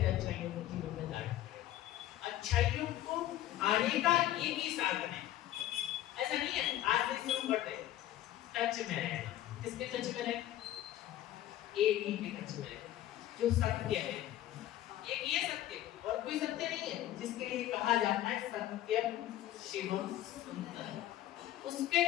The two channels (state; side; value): quieter; right; 13.6 dB